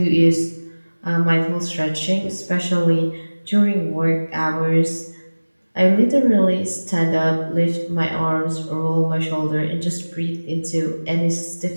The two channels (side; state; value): both; inverted; correlation -1.00